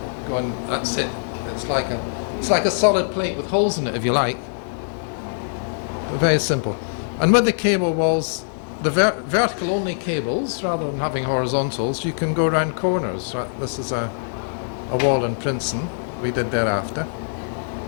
going. That's it. It's like a solid plate with holes in it, if you like. But very simple. And with the cable walls, the vertical only cables, rather than having horizontals, you can go around corners. Right? This is a wall in Princeton we did thereafter.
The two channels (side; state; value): right; silent; digital silence